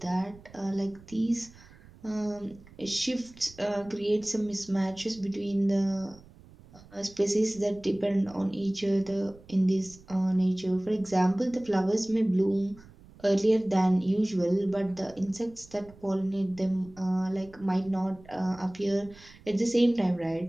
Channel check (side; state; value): right; noise; rumble, 23 dB below the sound